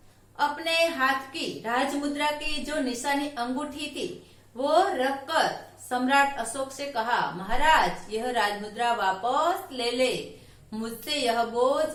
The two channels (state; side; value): identical; both; correlation 1.00